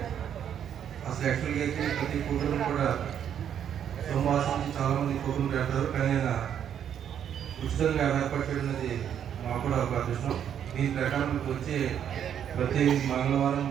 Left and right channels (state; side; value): quieter; left; 9.1 dB